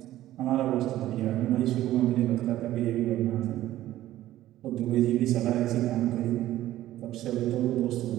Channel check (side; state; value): left; quieter; 14.2 dB